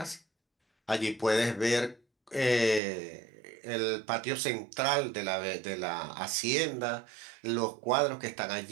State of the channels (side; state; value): left; drops out; at 2.8 s